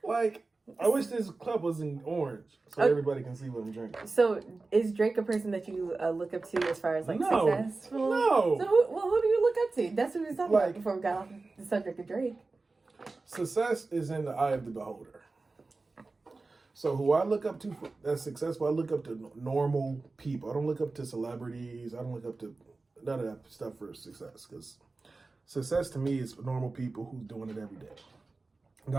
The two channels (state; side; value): quieter; left; 3.6 dB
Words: Like, I wish this cup was in orange so everybody can see what I'm drinking. So, is Drake a person that you look up to as far as like successful? No. So, who do you look up to? That's what we was talking about before we got off the subject of Drake. Success is in the eye of the beholder. So who I look up to that's successful, I look up to normal people. I don't look up to celebrities. I don't look up to none of that stuff for success. Because success to me is normal people who's doing it every day. And